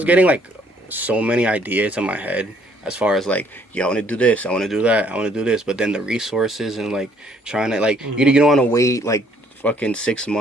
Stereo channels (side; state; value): both; normal; correlation 0.64